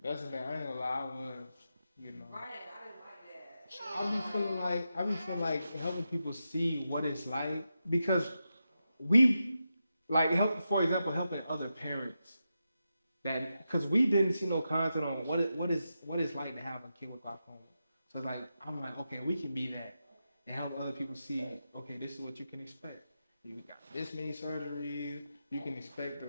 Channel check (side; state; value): both; inverted; correlation -0.88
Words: That's the thing. I ain't gonna lie. I was, you know. Right, I didn't like that. I be feeling like helping people see what it's like because we like help. For example, helping other parents that because we didn't see no content on what it's like to have a kid with glaucoma. So like I'm like, okay, we can be that and help other people see, okay, this is what you can expect. You got this many surgeries. You can expect the